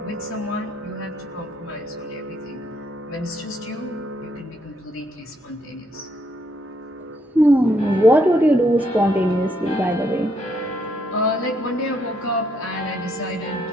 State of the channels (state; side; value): normal; both; correlation 0.73